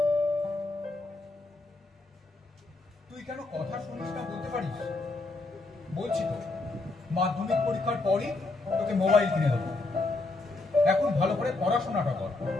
তুই কেন কথা শুনিস না বলতে পারিস? বলছি তো, মাধ্যমিক পরীক্ষার পরই তোকে মোবাইল কিনে দেবো। এখন ভালো করে পড়াশোনাটা কর।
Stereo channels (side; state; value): right; quieter; 3.2 dB